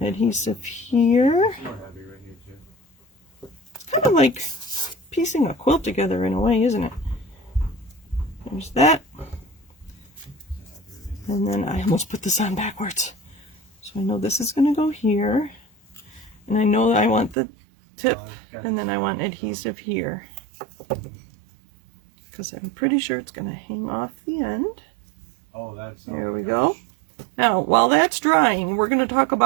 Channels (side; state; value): left; drops out; at 17.4 s